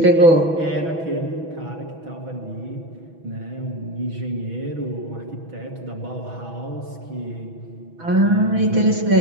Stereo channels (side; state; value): left; late; 6.1 ms